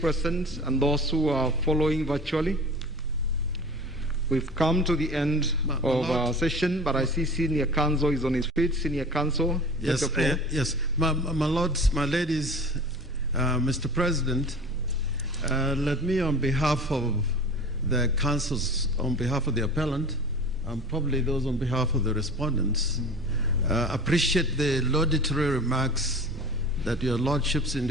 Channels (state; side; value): normal; both; correlation 0.38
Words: and those who are following virtually, we've come to the end of our session, but I see Senior Counsel is on his feet. Senior Counsel, yes, yes, my lords, my ladies, Mr. President, let me, on behalf of the councils, on behalf of the appellant, and probably those on behalf of the respondents, appreciate the laudatory remarks that your lordships and